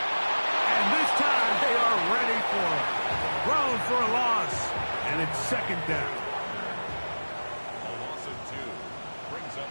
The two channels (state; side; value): inverted; both; correlation -1.00